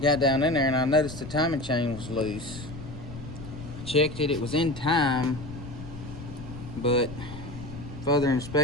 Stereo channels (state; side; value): noise; left; rumble, 12 dB below the sound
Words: Got down in there and I noticed the timing chain was loose. Checked it, it was in time, but further